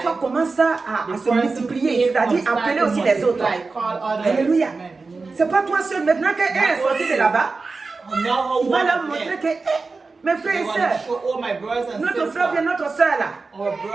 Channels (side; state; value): left; quieter; 4.0 dB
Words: foi commence à the se person multiplier, c'est-à-dire start appeler to aussi les autres. multiply, call others. Alléluia. Amen. C'est pas toi seul. Maintenant qu'elle est sortie de là-bas, Now how il va one leur of montrer them, que, mes frères they et want to sœurs, show all my brothers and notre frère bien, sisters, notre sœur là, our